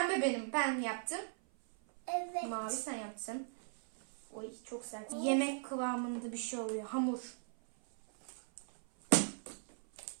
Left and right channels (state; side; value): silent; left; 52 dB below the other